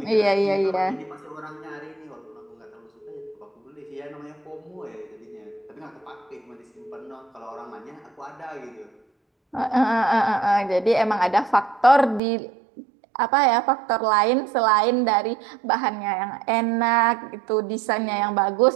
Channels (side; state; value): left; drops out; at 12.2 s